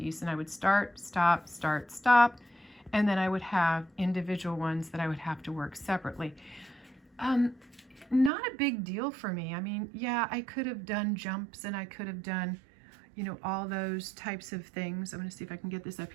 and I would start, stop, start, stop, and then I would have individual ones that I would have to work separately. Not a big deal for me. I mean, yeah, I could have done jumps and I could have done, you know, all those types of things. I'm going to see if I can get this up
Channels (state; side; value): drops out; left; at 8.3 s